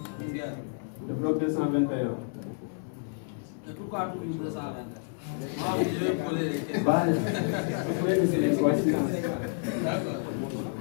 le bloc 221. Et pourquoi tout le 221? Moi, je vais poser des questions. Bah, vous pouvez me dire quoi, D'accord.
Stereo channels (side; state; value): right; silent; 58 dB below the other